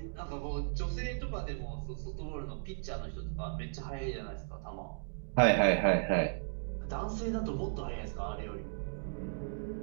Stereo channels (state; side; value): silent; left; digital silence